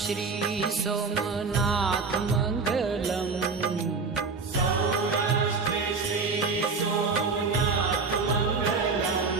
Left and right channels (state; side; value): quieter; left; 4.6 dB